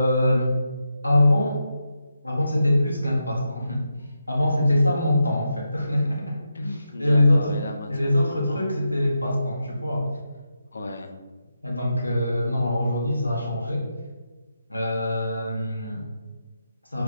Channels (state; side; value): inverted; both; correlation -0.86